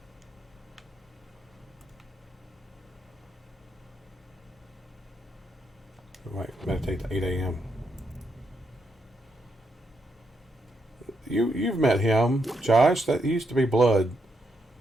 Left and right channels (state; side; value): normal; both; correlation 0.80